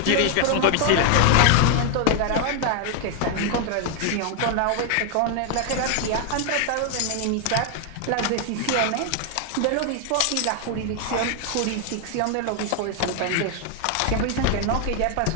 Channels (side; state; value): both; different; correlation 0.00